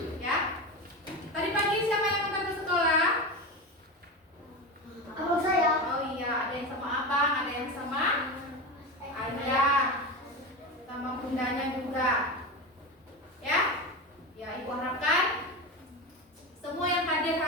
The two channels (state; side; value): normal; both; correlation 0.22